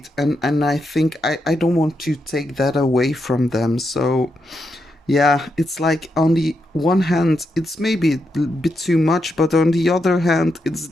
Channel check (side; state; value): both; normal; correlation 0.83